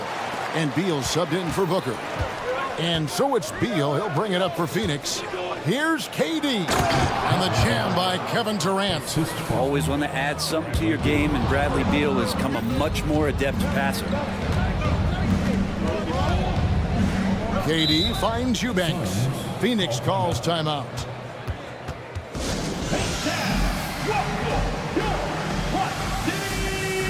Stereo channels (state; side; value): identical; both; correlation 1.00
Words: and Beal subbed in for Booker. And so it's Beal. He'll bring it up for Phoenix. Here's KD, and the jam by Kevin Durant. Always want to add something to your game, and Bradley Beal has come a much more adept passer. KD finds Eubanks. Phoenix calls timeout.